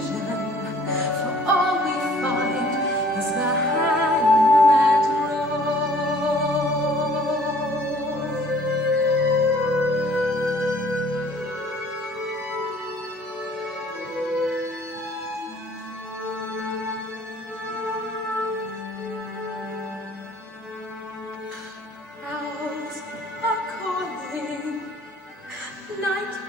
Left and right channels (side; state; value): both; normal; correlation 0.55